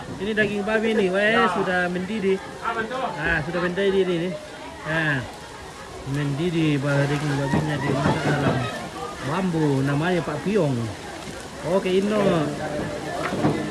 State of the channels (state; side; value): identical; both; correlation 1.00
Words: Ini daging babi nih, weh sudah mendidih. Nah, sudah mendidih ini. Nah, mendidih daging babinya dimasak dalam bambu, namanya Pak Piong. Oke, Ino.